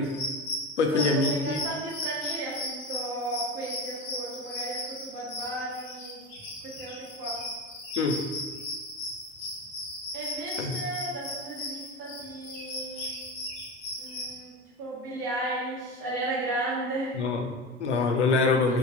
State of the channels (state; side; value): normal; both; correlation 0.24